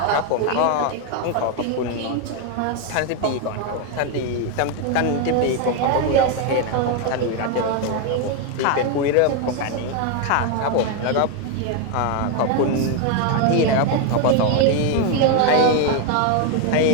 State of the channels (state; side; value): different; both; correlation 0.01